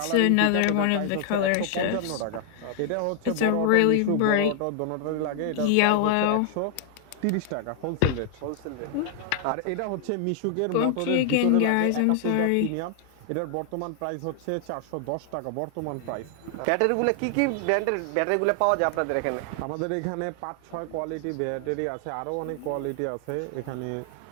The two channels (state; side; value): different; both; correlation 0.00